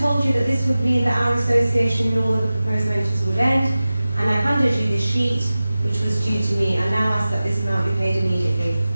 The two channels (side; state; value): both; inverted; correlation -0.96